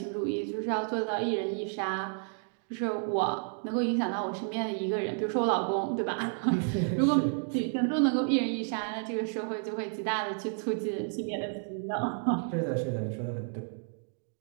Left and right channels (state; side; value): silent; left; 57 dB below the other